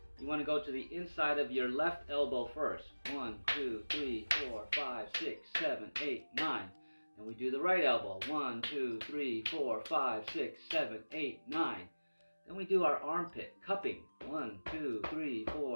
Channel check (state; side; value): inverted; both; correlation -1.00